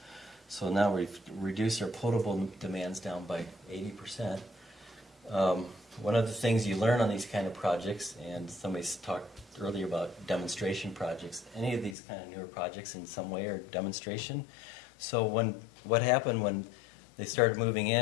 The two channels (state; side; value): drops out; right; at 12.0 s